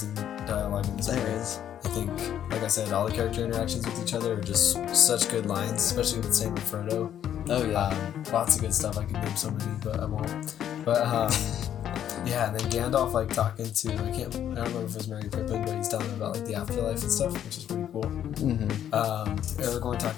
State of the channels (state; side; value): quieter; right; 10.2 dB